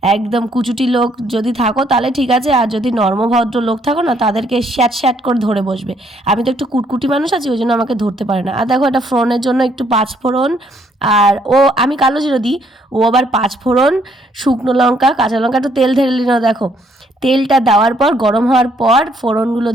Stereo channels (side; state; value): both; normal; correlation 0.69